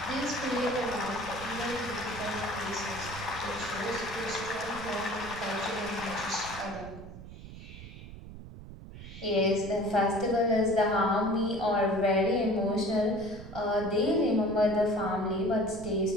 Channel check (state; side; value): noise; right; rumble, 14 dB below the sound